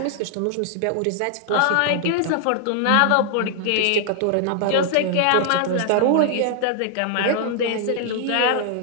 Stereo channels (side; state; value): both; different; correlation 0.00